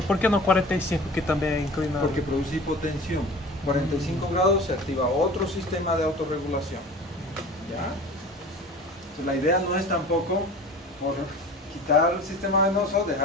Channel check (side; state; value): both; normal; correlation 0.39